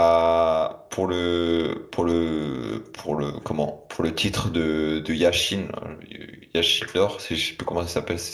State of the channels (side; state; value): both; identical; correlation 1.00